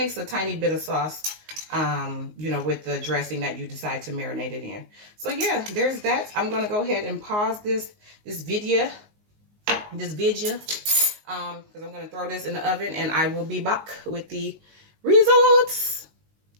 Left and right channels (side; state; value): left; late; 19 ms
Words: a tiny bit of sauce, you know, with the dressing that you decide to marinate it in. So yeah, there's that. I'm going to go ahead and pause this video. Because I'm going to throw this in the oven and I will be back with the results.